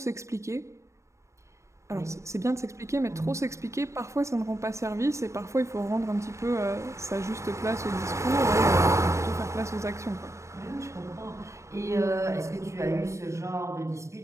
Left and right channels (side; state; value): left; late; 0.14 ms